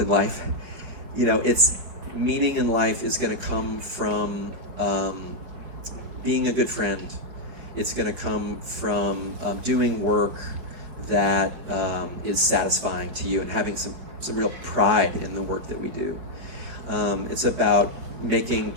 life. It's meaning in life is going to come from being a good friend. it's going to come from doing work that is satisfying to you and having some real pride in the work that we do. It's about making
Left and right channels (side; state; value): left; late; 5.3 ms